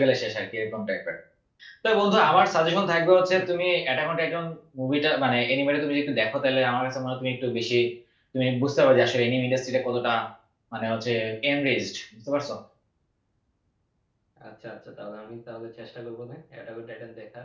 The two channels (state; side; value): identical; both; correlation 1.00